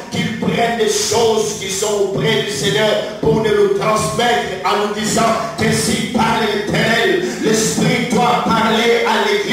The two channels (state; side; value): identical; both; correlation 1.00